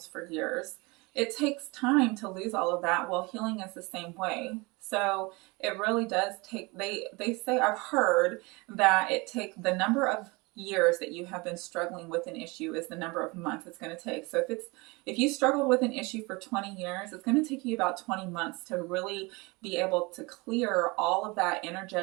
for years, it takes time to lose all of that. Well, healing is the same way. So it really does take, they say, I've heard that it takes the number of years that you have been struggling with an issue is the number of months it's going to take. So if you struggled with an issue for 20 years, it's going to take you about 20 months to really be able to clear all of that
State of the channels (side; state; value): left; quieter; 25.8 dB